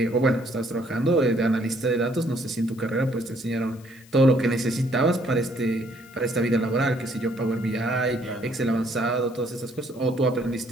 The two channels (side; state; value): left; noise; hiss, 26 dB below the sound